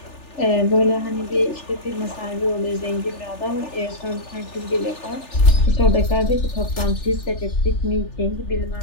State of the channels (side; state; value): right; late; 3.4 ms